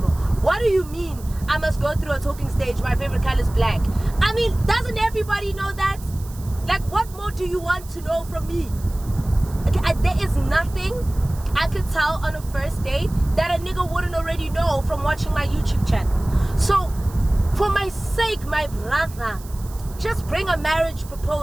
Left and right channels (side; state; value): right; noise; hiss, 20 dB below the sound